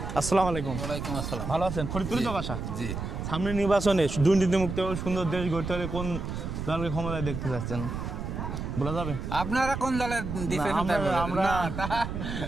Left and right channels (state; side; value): noise; right; rumble, 5 dB below the sound